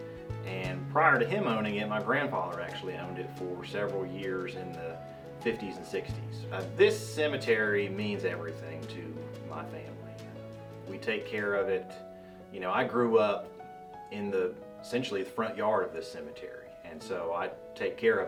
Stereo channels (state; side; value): identical; both; correlation 1.00